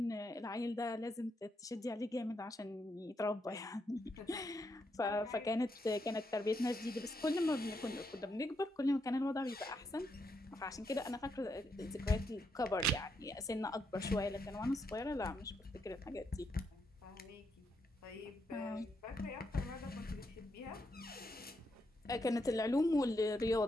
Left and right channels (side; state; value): both; normal; correlation 0.80